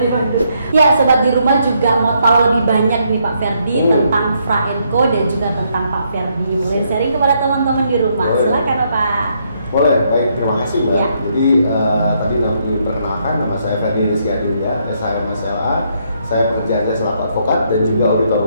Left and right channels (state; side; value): inverted; both; correlation -0.74